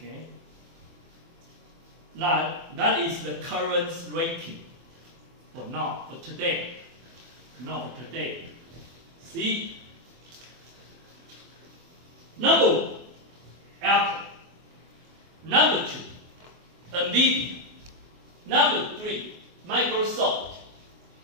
That is the current ranking for now, for today. Now for today. See? Number 1, Apple. Number 2, NVIDIA. Number 3, Microsoft.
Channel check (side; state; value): left; late; 24 ms